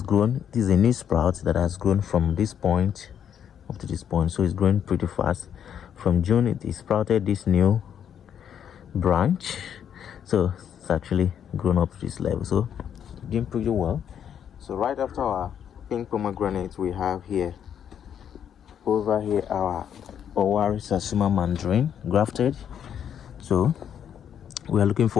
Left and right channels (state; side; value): quieter; right; 8.9 dB